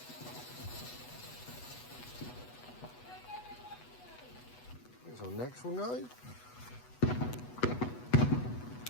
Here's our next one, guys.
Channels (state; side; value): late; right; 8.1 ms